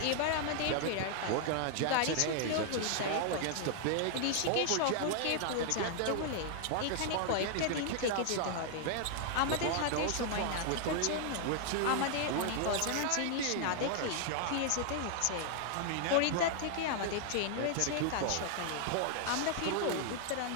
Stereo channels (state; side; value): different; both; correlation 0.00